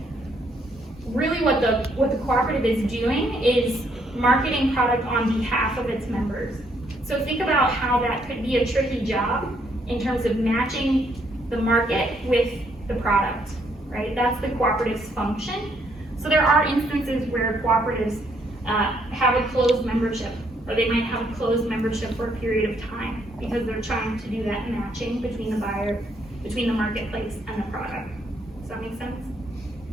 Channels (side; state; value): both; normal; correlation 0.71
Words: really what the cooperative is doing is marketing product on behalf of its members. So think about how that could be a tricky job in terms of matching the market with the product, right? That's the cooperative's function. So there are instances where cooperatives have a closed membership, or they might have a closed membership for a period of time because they're trying to do that matching between the buyer, between the marketplace and the product. Does that make sense?